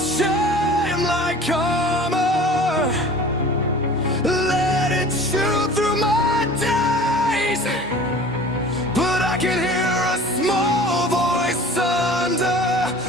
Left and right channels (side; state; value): both; normal; correlation 0.43